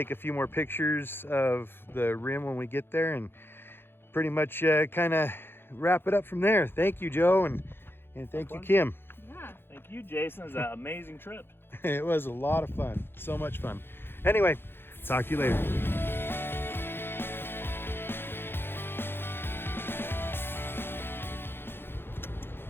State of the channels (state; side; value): late; right; 0.10 ms